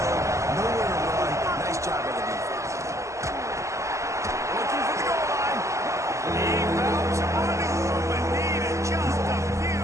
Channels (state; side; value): late; left; 0.15 ms